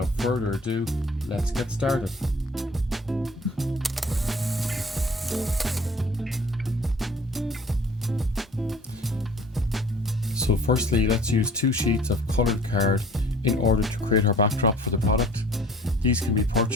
further ado, let's get started. So firstly, let's use 2 sheets of coloured card in order to create our backdrop for the product. These can be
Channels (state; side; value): normal; both; correlation 0.50